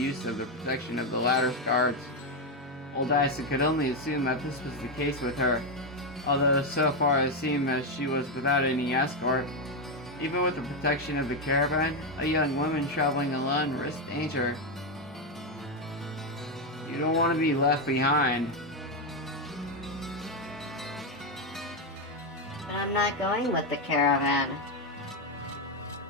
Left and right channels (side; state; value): both; normal; correlation 0.06